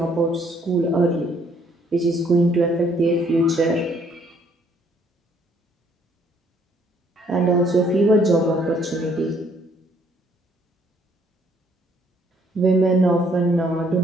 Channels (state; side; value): normal; both; correlation 0.65